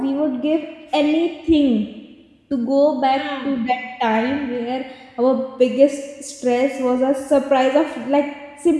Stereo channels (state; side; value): identical; both; correlation 1.00